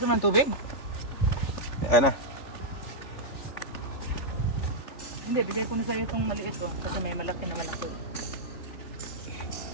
man tubig? Ano? Hindi, bigay ko na sa iyo itong maliit oh, kasi may malaki na malaki.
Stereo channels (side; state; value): right; late; 3.4 ms